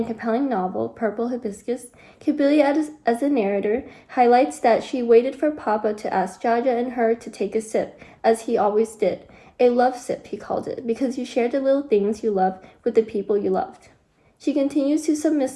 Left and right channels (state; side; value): identical; both; correlation 1.00